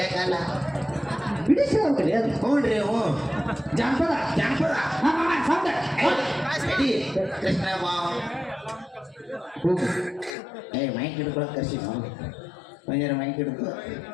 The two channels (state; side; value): drops out; right; at 10.4 s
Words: ಕಾಲ ಬಿಡಿಸಿ ಹೋಗ್ತದೆ ಅದು ಹ್ಞೂನ್ರಿ ಹ್ಞೂ ಜಾನಪದ ಜಾನಪದ ರೆಡಿ ಕೃಷ್ಣ ಬಾವ್ ಮೈಕ್ ಹಿಡ್ಕೊಳಕ್ ಕರ್ಸಿ ನಾವು ಒಂಜಾರ ಮೈಕ್ ಹಿಡ್ಕೊ